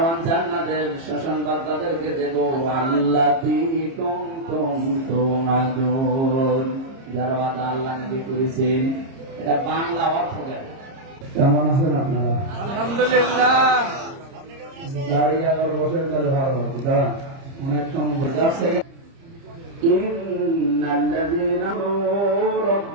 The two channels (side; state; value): left; late; 30 ms